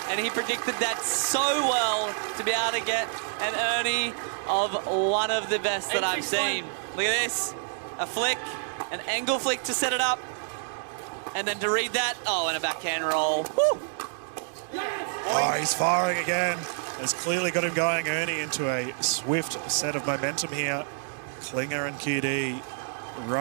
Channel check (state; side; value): silent; left; 60 dB below the other